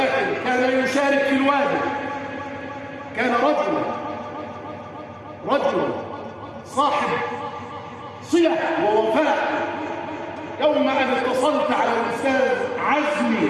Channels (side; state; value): both; identical; correlation 1.00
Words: كان يشارك في الواجب، كان رجلا صاحب صلة ووفاء. يوم أن اتصلت على الأستاذ عزمي